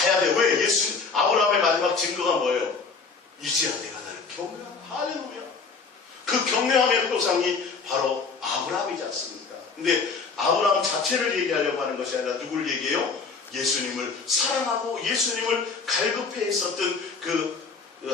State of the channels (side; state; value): right; quieter; 4.8 dB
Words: 돼요. 왜? 아브라함의 마지막 증거가 뭐예요? 이제야 내가 나를 경외한다. 할렐루야. 그 경외함의 표상이 바로 아브라함이지 않습니까? 근데 아브라함 자체를 얘기하려고 하는 것이 아니라 누구를 얘기해요? 예수님을 사랑하고 예수님을 갈급해 있었던 그